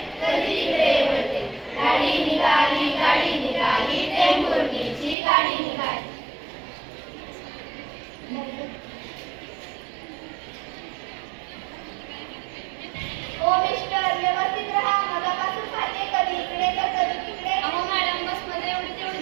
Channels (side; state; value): left; drops out; at 5.2 s